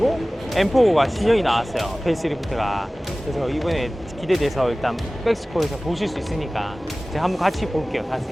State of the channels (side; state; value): both; normal; correlation 0.98